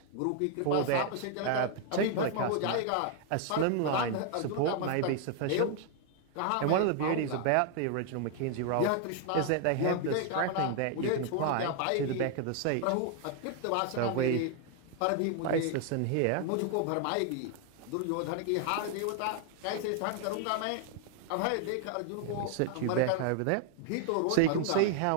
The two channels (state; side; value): different; both; correlation 0.00